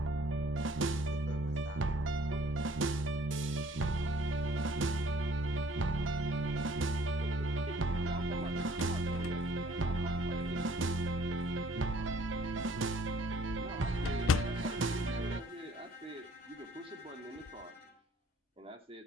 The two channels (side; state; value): both; normal; correlation 0.58